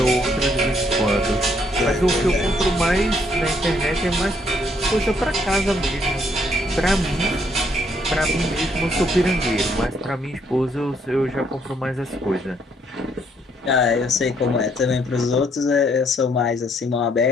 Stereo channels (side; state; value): both; normal; correlation 0.70